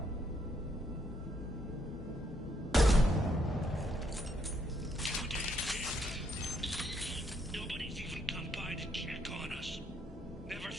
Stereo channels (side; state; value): both; normal; correlation 0.73